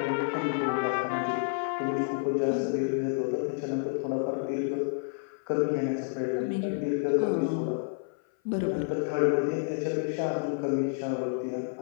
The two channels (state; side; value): silent; right; 57 dB below the other